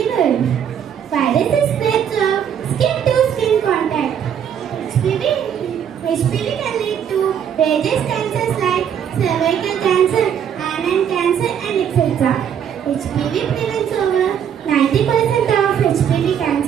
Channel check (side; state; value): left; quieter; 8.7 dB